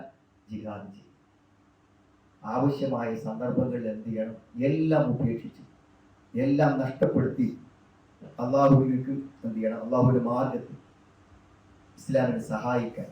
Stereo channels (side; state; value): both; identical; correlation 1.00